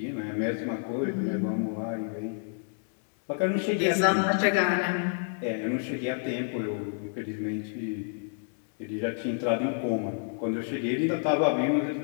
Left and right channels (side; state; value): right; silent; digital silence